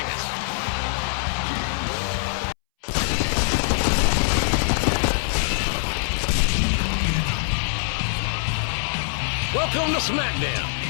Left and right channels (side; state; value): right; silent; 63 dB below the other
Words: us. Welcome to SmackDown,